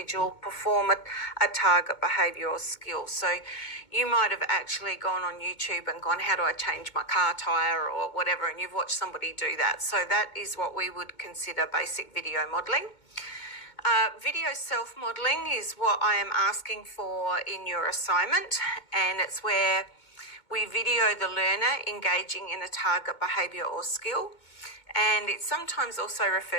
perform a target behaviour or skill. So you might have actually gone on YouTube and gone, how do I change my car tyre or whatever, and you've watched somebody do that. So that is what we would consider basic video modelling. Video self-modelling is what I am asking for in your assignment, and it's where we video the learner engaging in a target behaviour or skill, and it's sometimes also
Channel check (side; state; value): right; late; 2.2 ms